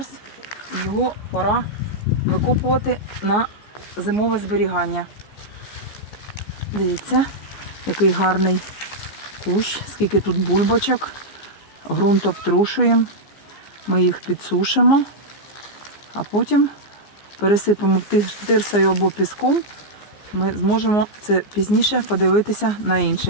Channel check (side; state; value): right; late; 15 ms